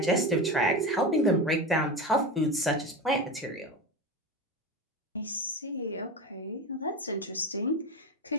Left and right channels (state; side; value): normal; both; correlation 0.24